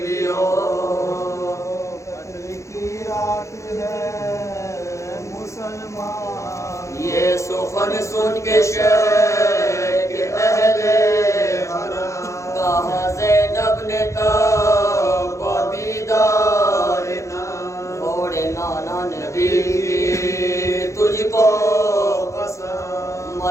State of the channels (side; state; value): right; late; 0.15 ms